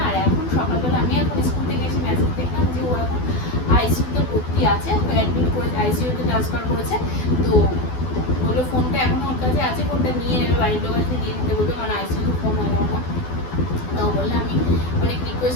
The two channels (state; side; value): late; right; 12 ms